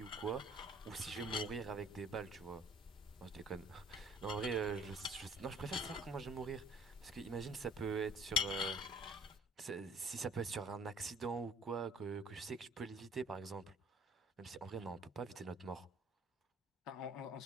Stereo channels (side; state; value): both; normal; correlation 0.53